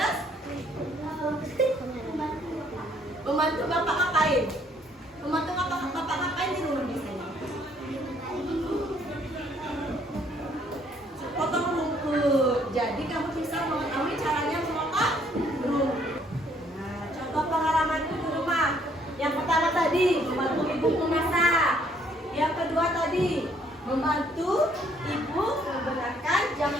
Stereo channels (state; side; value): normal; both; correlation 0.65